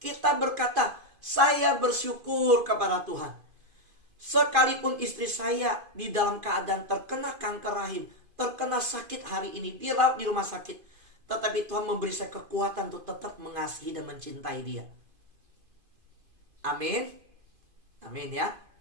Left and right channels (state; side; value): late; left; 2.5 ms